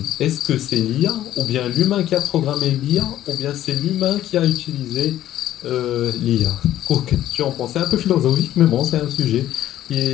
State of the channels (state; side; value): quieter; right; 12.8 dB